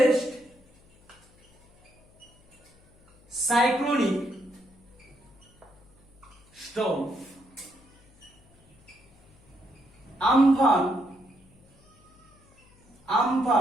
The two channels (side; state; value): left; noise; hum, 30 dB below the sound